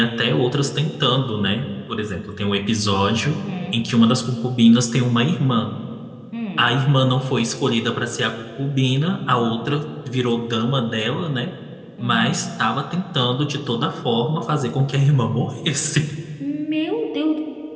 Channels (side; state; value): both; identical; correlation 1.00